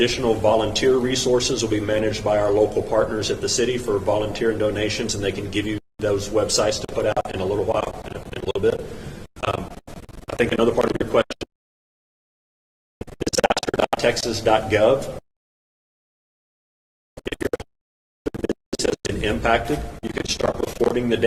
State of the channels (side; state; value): both; identical; correlation 1.00